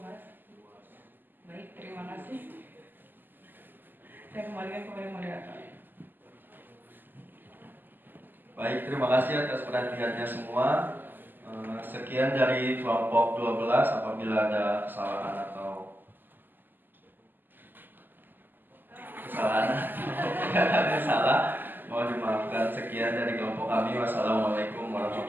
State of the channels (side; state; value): left; late; 0.090 ms